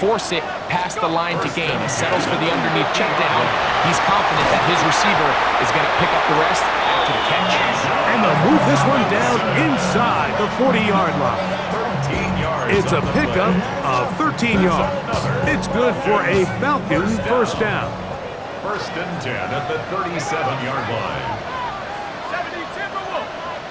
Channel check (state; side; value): identical; both; correlation 1.00